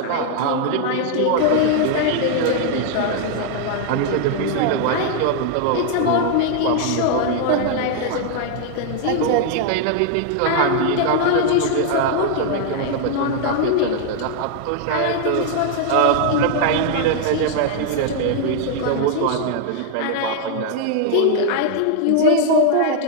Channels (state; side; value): different; both; correlation 0.00